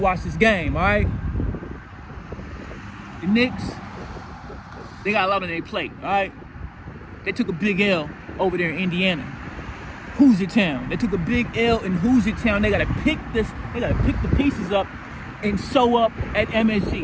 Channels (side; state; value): both; identical; correlation 1.00